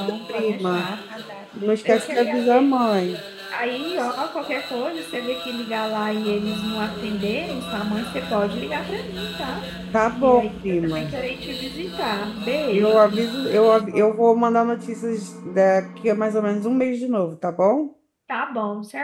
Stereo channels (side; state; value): both; identical; correlation 1.00